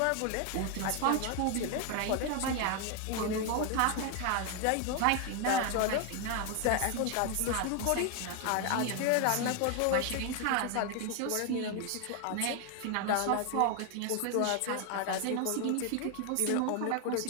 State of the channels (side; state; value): both; different; correlation 0.01